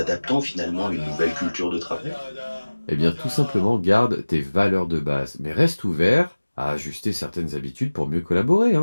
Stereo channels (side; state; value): both; inverted; correlation -1.00